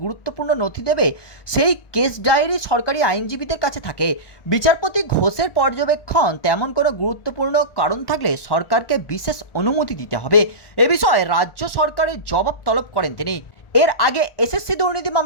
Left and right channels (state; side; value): late; right; 1.4 ms